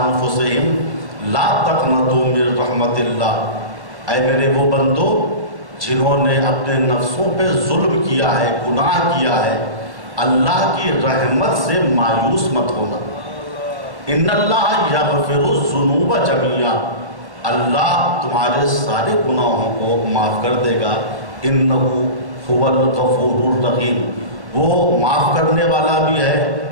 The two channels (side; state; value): left; late; 1.1 ms